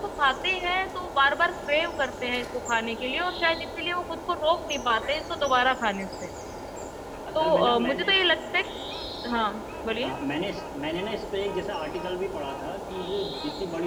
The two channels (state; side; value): identical; both; correlation 1.00